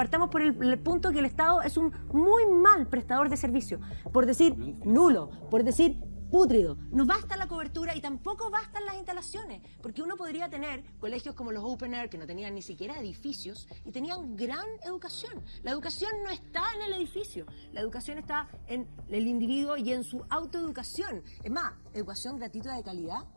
por el punto que el Estado es un muy mal prestador de servicio, por decir nulo, por decir pútrido. No basta la cobertura y tampoco bastan las instalaciones, porque uno podría tener colegios como los Open Air, que no tenían ni siquiera edificios y tenían gran educación. La educación no está en el edificio, la educación está en el individuo y en su autoeducación. Es más, educación gratuita de calidad.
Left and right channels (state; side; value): inverted; both; correlation -1.00